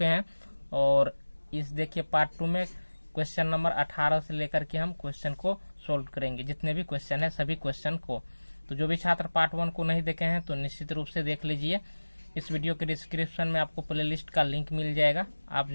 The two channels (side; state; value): both; inverted; correlation -1.00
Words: हैं और इस देखिए पार्ट 2 में क्वेश्चन नंबर 18 से लेकर के हम क्वेश्चन को सोल्व करेंगे। जितने भी क्वेश्चन है सभी क्वेश्चन को, तो जो भी छात्र पार्ट 1 को नहीं देखे हैं तो निश्चित रूप से देख लीजिए। इस वीडियो के डिस्क्रिप्शन में आपको प्लेलिस्ट का लिंक मिल जाएगा। आप